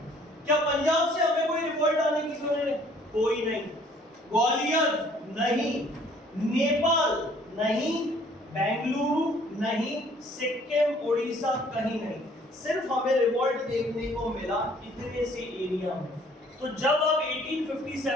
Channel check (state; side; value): normal; both; correlation 0.58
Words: क्या पंजाब से हमें कोई रिवॉल्ट आने की खबर है? कोई नहीं। ग्वालियर नहीं, नेपाल नहीं, बेंगलुरु नहीं, सिक्किम, उड़ीसा कहीं नहीं। सिर्फ हमें रिवॉल्ट देखने को मिला इतने से एरिया में। तो जब आप